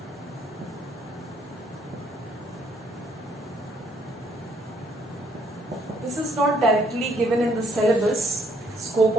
This is not directly given in the syllabus, scope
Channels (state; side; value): normal; both; correlation 0.67